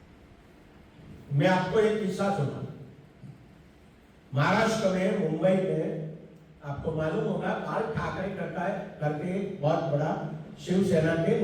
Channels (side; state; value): both; identical; correlation 1.00